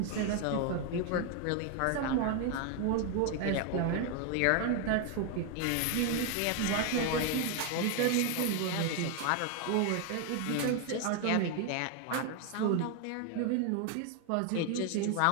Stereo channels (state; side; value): different; both; correlation 0.01